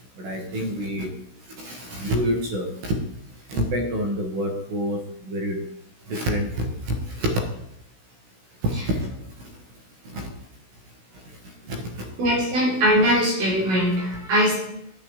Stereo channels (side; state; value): left; late; 16 ms